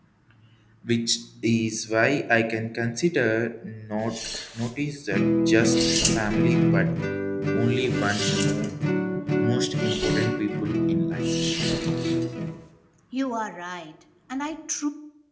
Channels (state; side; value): identical; both; correlation 1.00